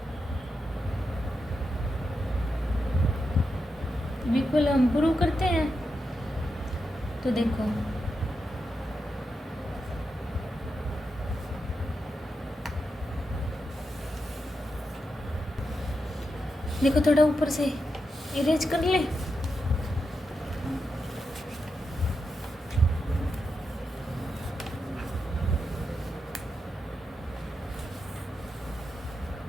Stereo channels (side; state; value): both; normal; correlation 0.87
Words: इक्वल हम प्रूव करते हैं। तो देखो देखो थोड़ा ऊपर से इरेज कर ले,